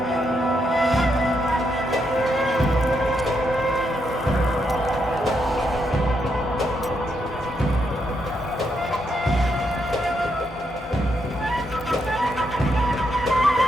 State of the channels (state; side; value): normal; both; correlation 0.79